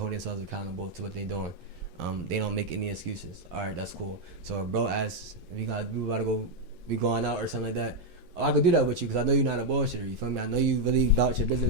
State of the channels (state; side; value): late; left; 9.7 ms